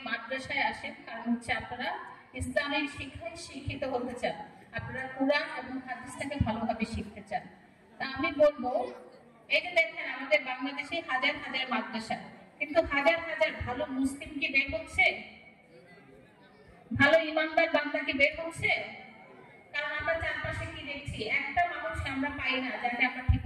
মাদ্রাসায় আসেন, কারণ হচ্ছে আপনারা ইসলামিক শিক্ষায় শিক্ষিত হতে চান, আপনারা কুরআন এবং হাদিসটাকে ভালোভাবে শিখতে চান। তা আমি বলবো, এই যে দেখেন আমাদের বাংলাদেশে হাজার হাজার মাদ্রাসা, কিন্তু হাজার হাজার ভালো মুসলিম কি বের হচ্ছে? ভালো ইমানদার বান্দা কি বের হচ্ছে? কারণ আমরা চারপাশে কি দেখছি, একটা মানুষ আমরা পাই না যাকে আমরা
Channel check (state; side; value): identical; both; correlation 1.00